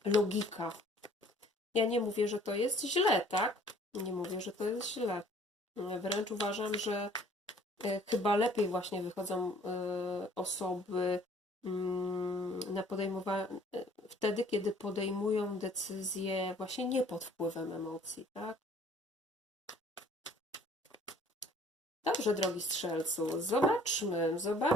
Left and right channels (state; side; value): normal; both; correlation 0.56